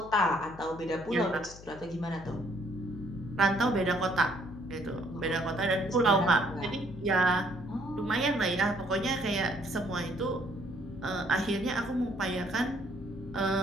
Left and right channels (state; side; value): noise; left; hum, 17 dB below the sound